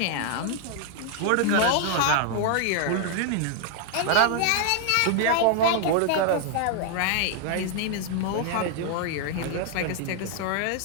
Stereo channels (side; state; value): both; different; correlation 0.00